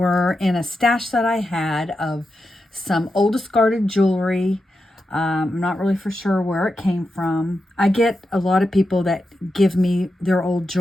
in a stash that I had of some old discarded jewelry. I'm not really for sure where it came from. I get a lot of people that give me their old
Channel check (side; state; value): both; normal; correlation 0.88